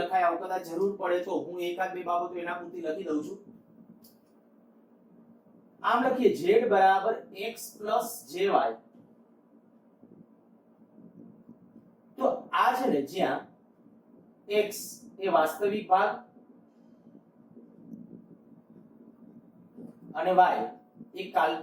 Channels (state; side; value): identical; both; correlation 1.00